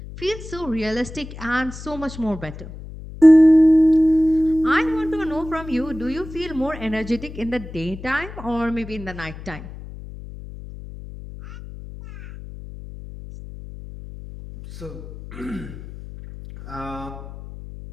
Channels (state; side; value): noise; left; hum, 13 dB below the sound